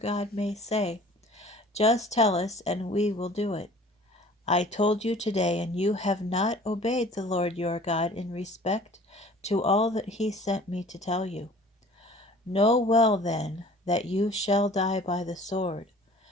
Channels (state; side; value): normal; both; correlation 0.48